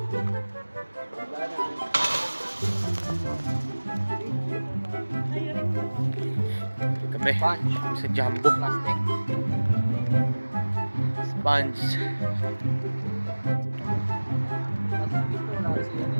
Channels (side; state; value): both; inverted; correlation -1.00